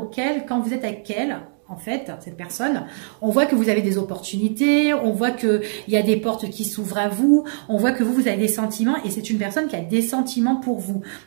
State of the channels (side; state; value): left; silent; digital silence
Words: quand vous êtes avec elle... En fait, cette personne, on voit que vous avez des opportunités, on voit qu'il y a des portes qui s'ouvrent à vous, on voit que vous avez des sentiments et c'est une personne qui a des sentiments pour vous.